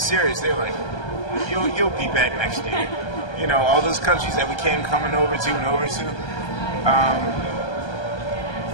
serious. They were like, you'll be back next year. You know, all those countries that we came coming over to,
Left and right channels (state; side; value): late; right; 1.2 ms